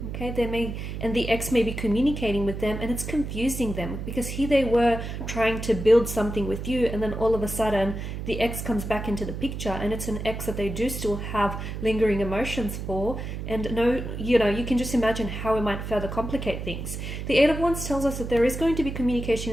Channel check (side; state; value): right; noise; hum, 6 dB below the sound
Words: Okay, and the ex may be communicating with them, and it's confusing them because here they were trying to build something with you, and then all of a sudden the ex comes back into the picture, and it's an ex that they do still have lingering emotions for. And you can just imagine how it might further complicate things. The Eight of Wands tells us that there is going to be communication